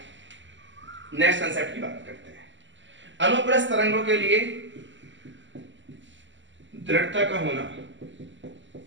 नेक्स्ट कंसेप्ट की बात करते हैं। अनुप्रस्थ तरंगों के लिए दृढ़ता का होना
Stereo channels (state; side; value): late; left; 0.54 ms